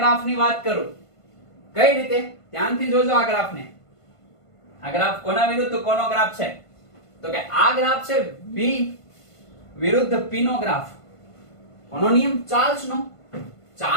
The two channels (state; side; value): late; right; 1.5 ms